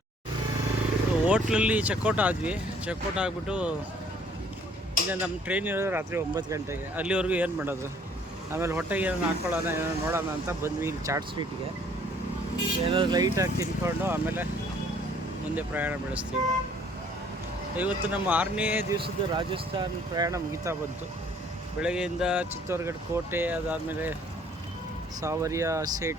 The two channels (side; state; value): both; normal; correlation 0.59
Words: ಹೋಟ್ಲಲ್ಲಿ ಚೆಕ್ಔಟ್ ಆದ್ವಿ. ಚೆಕ್ಔಟ್ ಆಗಿಬಿಟ್ಟು ಇಲ್ಲ, ನಮ್ಮ ಟ್ರೈನ್ ಇರೋದು ರಾತ್ರಿ 9 ಗಂಟೆಗೆ. ಅಲ್ಲಿವರೆಗೂ ಏನು ಮಾಡೋದು, ಆಮೇಲೆ ಹೊಟ್ಟೆಗೆ ಏನೋ ಹಾಕ್ಕೊಳ್ಳೋಣ, ಏನೋ ನೋಡೋಣ ಅಂತ ಬಂದ್ವಿ ಇಲ್ಲಿ ಚಾಟ್ ಸ್ವೀಟ್ಗೆ. ಏನಾದ್ರು ಲೈಟಾಗಿ ತಿನ್ಕೊಂಡು ಆಮೇಲೆ ಮುಂದೆ ಪ್ರಯಾಣ ಬೆಳೆಸ್ತೀವಿ. ಇವತ್ತು ನಮ್ಮ 6ನೇ ದಿವಸದ ರಾಜಸ್ಥಾನ್ ಪ್ರಯಾಣ ಮುಗಿತಾ ಬಂತು. ಬೆಳಗ್ಗೆಯಿಂದ ಚಿತ್ತೋರ್ಗಢ ಕೋಟೆ, ಅದಾದಮೇಲೆ ಸಾವರಿಯ